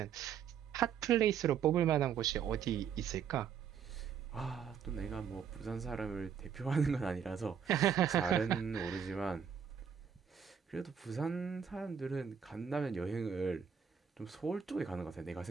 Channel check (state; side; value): quieter; left; 7.6 dB